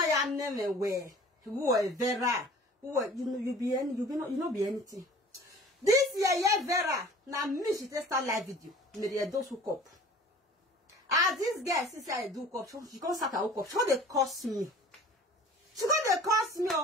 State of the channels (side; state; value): both; normal; correlation 0.47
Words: name where who are Vera, who are you be anything. This year, Vera, now me she start live video. Me those who cop. This girl since I do cop, she can't start a hook up. She they cost me. She got they cost me.